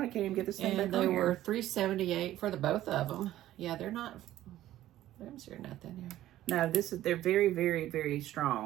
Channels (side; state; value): left; quieter; 13.9 dB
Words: can't even get this thing And back they on were here. $3.78 for the both of them. Yeah, they're not. I'm sure nothing here. No, they're very, very, very